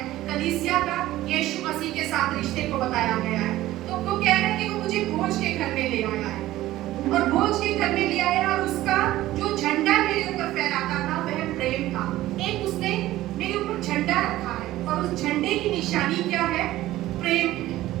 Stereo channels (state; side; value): quieter; left; 15.5 dB